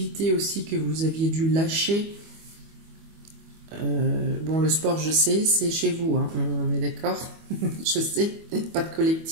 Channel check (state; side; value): late; left; 25 ms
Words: aussi que vous aviez dû lâcher. Bon, le sport, je sais, c'est chez vous, hein, on est d'accord. Je sais, pas de